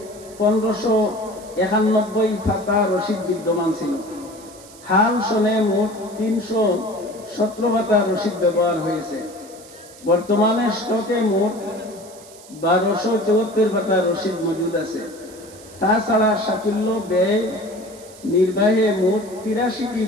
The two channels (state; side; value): noise; right; hiss, 21 dB below the sound